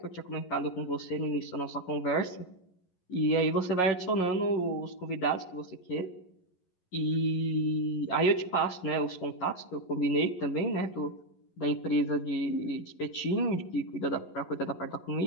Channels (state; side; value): late; right; 11 ms